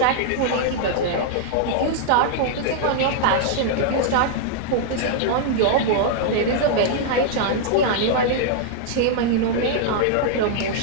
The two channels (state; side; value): different; both; correlation -0.01